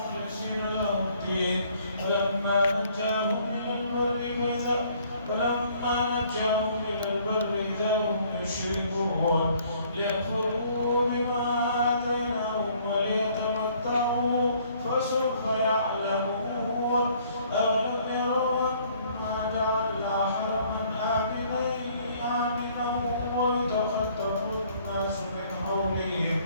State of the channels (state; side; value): inverted; both; correlation -0.61